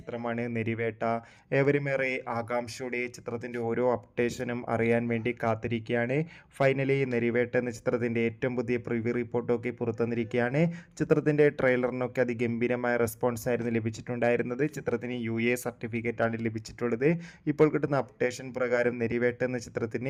നെരിവേട്ട. ഏവരുമേറെ ആകാംക്ഷയോടെ ചിത്രത്തിൻ്റെ ഓരോ അപ്ഡേഷനും അറിയാൻ വേണ്ടി കാത്തിരിക്കുകയാണ്. ഫൈനലി നെരിവേട്ട എന്ന ചിത്രത്തിൻ്റെ ഏറ്റവും പുതിയ പ്രിവ്യൂ റിപ്പോർട്ടൊക്കെ പുറത്തുവന്നിരിക്കുകയാണ്. ചിത്രത്തിൻ്റെ ട്രെയിലറിനൊക്കെ അതിഗംഭീരമായ റെസ്പോൺസ് ആയിരുന്നു ലഭിച്ചിട്ടുണ്ടായിരുന്നത്. ചിത്രത്തിന് UA സർട്ടിഫിക്കറ്റാണ് ലഭിച്ചിട്ടുള്ളത്. ഇപ്പോൾ കിട്ടുന്ന അപ്ഡേഷൻ പ്രകാരം നെരിവേട്ട എന്ന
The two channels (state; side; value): identical; both; correlation 1.00